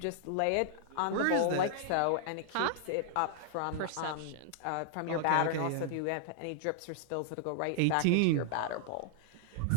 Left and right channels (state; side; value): different; both; correlation -0.01